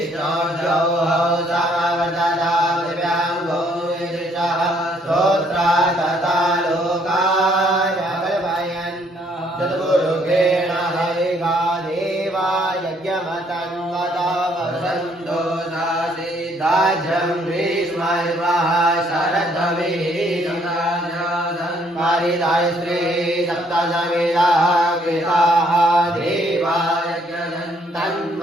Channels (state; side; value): normal; both; correlation 0.66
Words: समवर्तता पृथिव्यां भूमिदृशः श्रोत्रात् तथा लोकाय कल्पयन् चतुर्मुखेण हरिगा देवा यज्ञमतं वदा वसन्तो नासीदाज्यं ग्रीष्मर्वः शरद्भवेदं पारिदाय श्री सप्तसमिदाः कृताः देवा